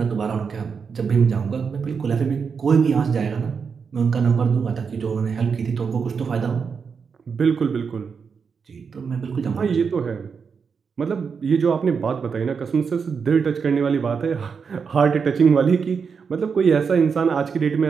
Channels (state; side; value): quieter; left; 5.9 dB